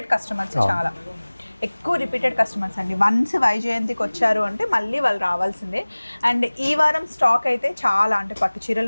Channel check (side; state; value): both; inverted; correlation -1.00